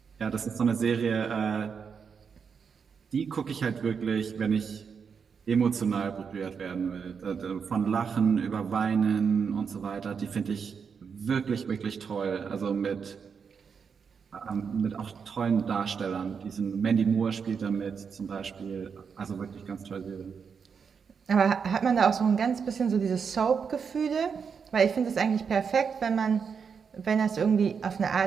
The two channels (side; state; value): left; quieter; 6.3 dB